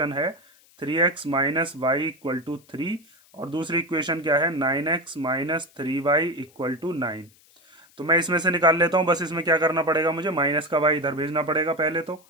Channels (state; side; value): noise; left; hiss, 29 dB below the sound